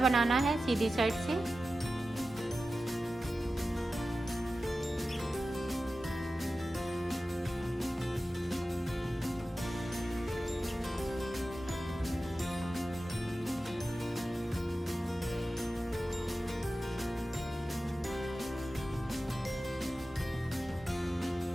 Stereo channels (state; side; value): normal; both; correlation 0.94